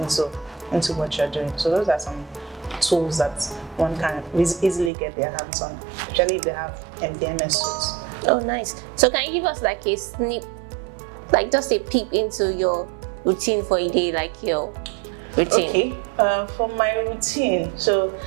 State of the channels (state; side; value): drops out; left; at 4.9 s